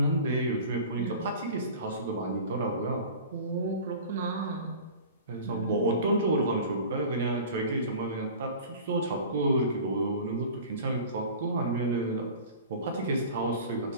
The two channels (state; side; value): inverted; both; correlation -0.39